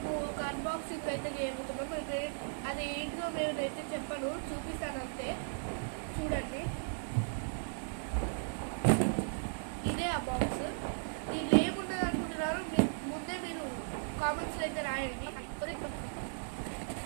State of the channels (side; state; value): left; silent; digital silence